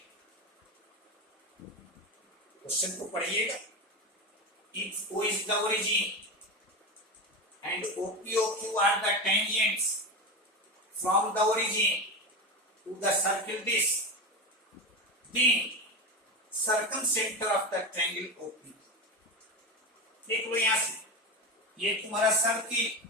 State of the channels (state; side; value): normal; both; correlation 0.20